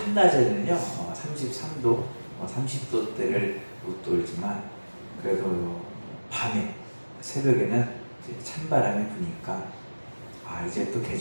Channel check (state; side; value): inverted; both; correlation -1.00